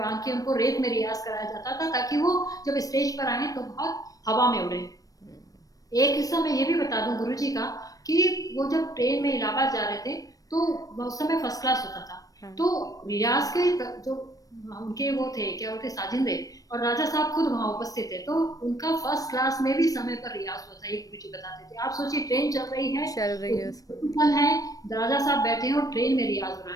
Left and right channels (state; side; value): late; right; 0.17 ms